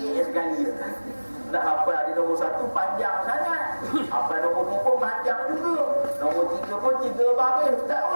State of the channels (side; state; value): both; inverted; correlation -1.00